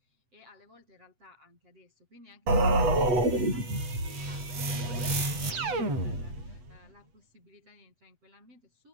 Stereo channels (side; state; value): left; late; 8.1 ms